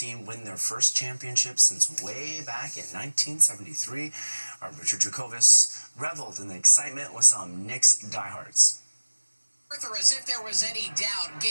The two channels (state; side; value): inverted; both; correlation -1.00